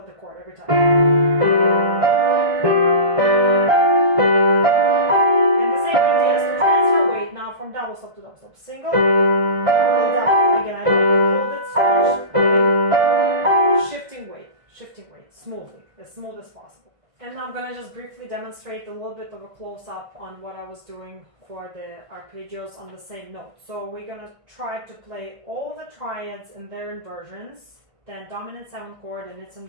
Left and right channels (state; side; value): late; left; 1.5 ms